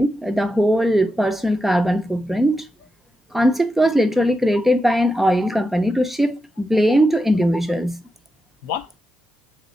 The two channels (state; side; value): normal; both; correlation 0.88